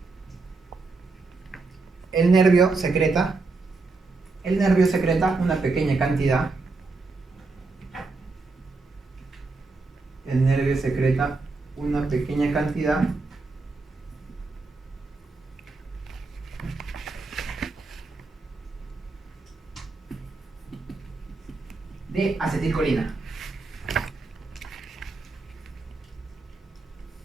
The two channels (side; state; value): left; quieter; 3.8 dB